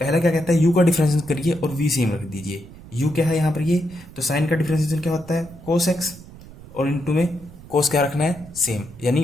पहला क्या कहता है, u का डिफरेंशिएशन करिए और v सेम रख दीजिए। u क्या है यहाँ पर, ये तो साइन का डिफरेंशिएशन क्या होता है, कोस एक्स, और इंटू में कोस क्या रखना है, सेम, यानी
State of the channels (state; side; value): noise; right; rumble, 18 dB below the sound